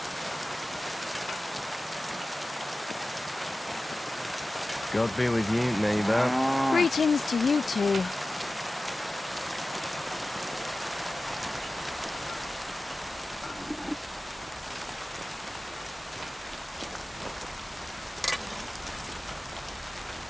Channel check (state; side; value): normal; both; correlation 0.96